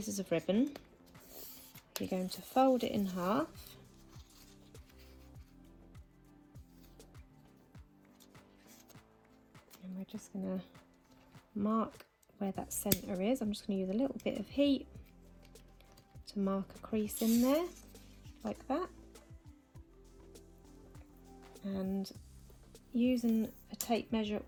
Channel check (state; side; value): identical; both; correlation 1.00